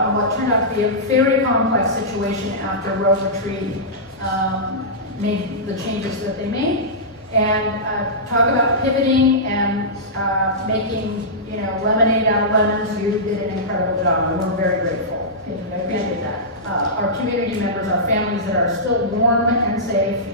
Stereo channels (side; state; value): both; normal; correlation -0.15